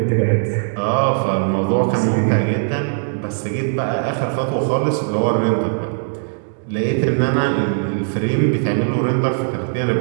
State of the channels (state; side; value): silent; left; digital silence